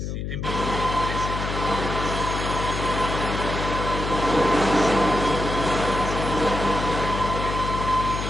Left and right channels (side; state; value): left; noise; hum, 4 dB below the sound